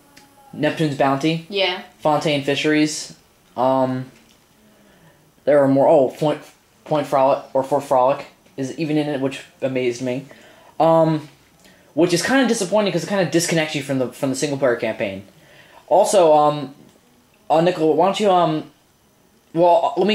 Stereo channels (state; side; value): identical; both; correlation 1.00